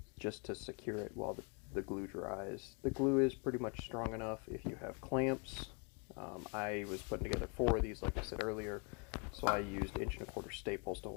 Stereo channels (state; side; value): quieter; right; 35.2 dB